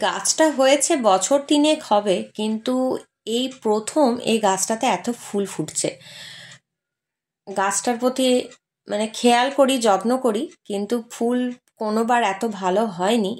গাছটা হয়েছে বছর 3 হবে, কিন্তু এই প্রথম এই গাছটাতে এত ফুল ফুটছে। গাছটার প্রতি মানে খেয়াল করি, যত্ন করি, কিন্তু ফুল কোনোবার এত ভালো হয়নি।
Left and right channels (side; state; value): both; identical; correlation 1.00